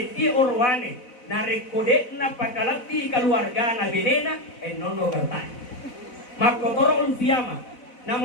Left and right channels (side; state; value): right; late; 4.0 ms